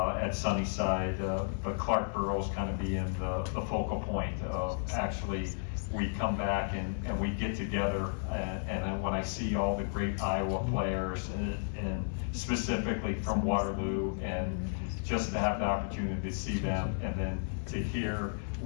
Sunnyside, but Clark Burrows kind of being the focal point of actually we come back and we get together, and when I see all the great Iowa players and specifically from Waterloo, and just to have the opportunity to see them, and then to hear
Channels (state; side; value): silent; right; digital silence